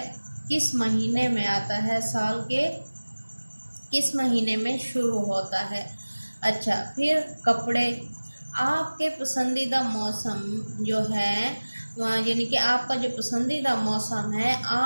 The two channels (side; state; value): both; inverted; correlation -1.00